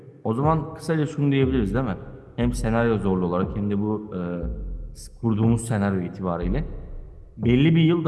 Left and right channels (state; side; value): identical; both; correlation 1.00